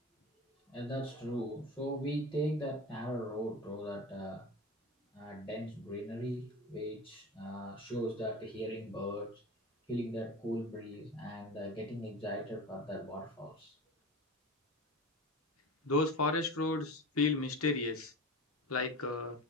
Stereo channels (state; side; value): normal; both; correlation 0.30